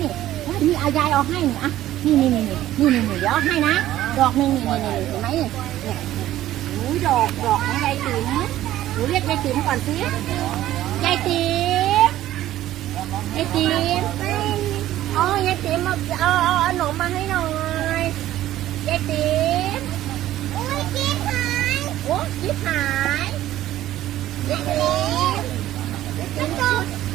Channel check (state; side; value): quieter; left; 13.8 dB